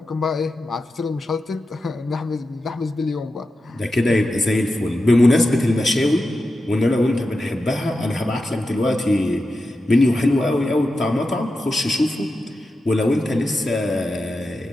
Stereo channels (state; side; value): normal; both; correlation 0.91